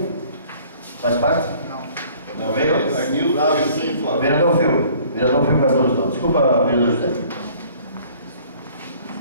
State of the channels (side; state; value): both; inverted; correlation -0.54